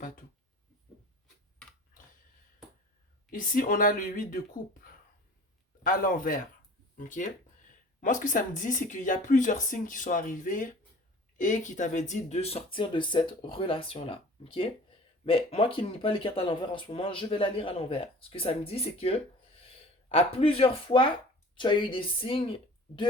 tout. Ici, on a le 8 de coupe à l'envers. Ok? Moi, ce que ça me dit, c'est qu'il y a plusieurs signes qui sont arrivés et qui t'avaient dit de sortir de cette relation-là. Ok? Mais moi qui ne lis pas les cartes à l'envers en ce moment, je vais la lire à l'envers. Ce que ça me dit, c'est que à plusieurs fois, tu as eu des signes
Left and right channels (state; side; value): normal; both; correlation 0.44